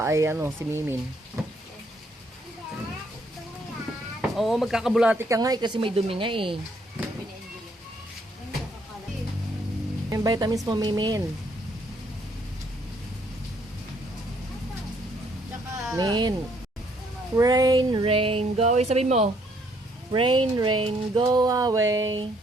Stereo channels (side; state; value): both; normal; correlation 0.68